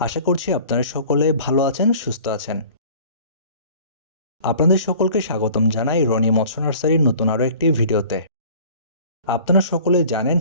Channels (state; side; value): inverted; both; correlation -0.47